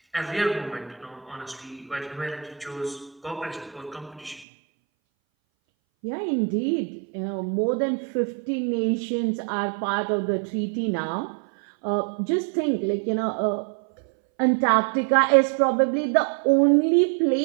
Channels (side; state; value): left; drops out; at 4.5 s